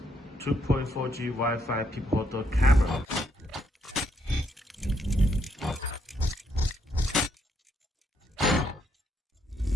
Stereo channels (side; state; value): both; normal; correlation 0.74